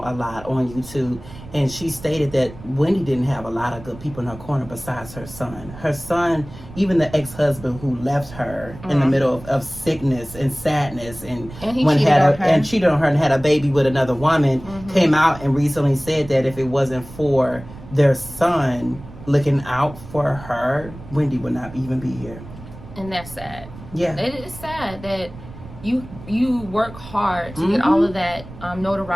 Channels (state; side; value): noise; right; rumble, 16 dB below the sound